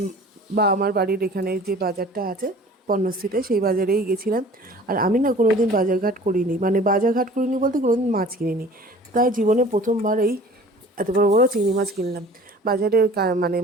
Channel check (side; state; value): both; normal; correlation 0.46